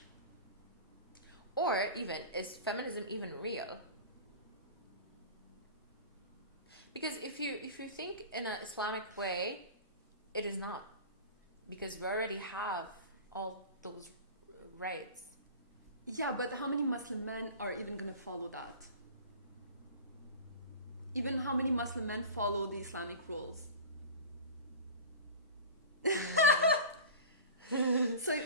or even, is feminism even real? Because if you think in an Islamic way, it is not, because we already have all those rights. Yeah, but how many Muslim men are even gonna follow that? Even how many Muslim men follow the Islamic rules? So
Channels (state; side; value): inverted; both; correlation -0.34